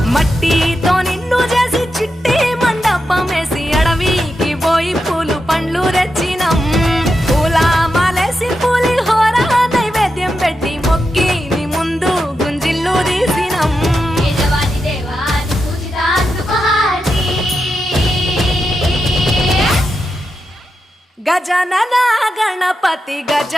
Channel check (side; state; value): both; normal; correlation 0.88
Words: మట్టితో నిన్ను చేసి చిట్టి మండపమేసి అడవికి పోయి పూలు పండ్లు తెచ్చినం. పూల మాలేసి పులిహోర నైవేద్యం పెట్టి మొక్కి నీ ముందు గుంజిల్లు తీసినం. గజనన గణపతి